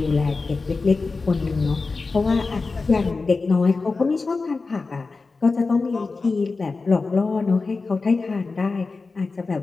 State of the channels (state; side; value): quieter; right; 4.0 dB